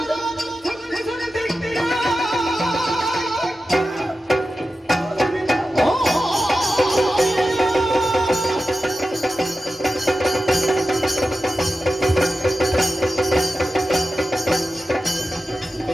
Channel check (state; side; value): normal; both; correlation 0.92